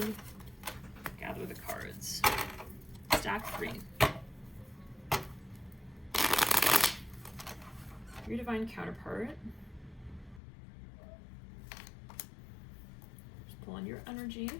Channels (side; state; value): right; drops out; at 10.4 s